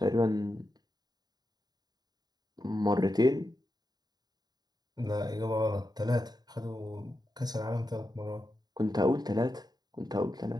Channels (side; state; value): left; late; 0.20 ms